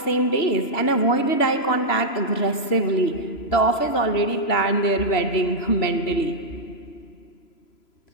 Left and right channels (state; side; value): late; right; 3.0 ms